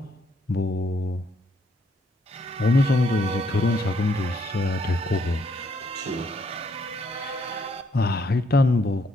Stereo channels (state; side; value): normal; both; correlation 0.72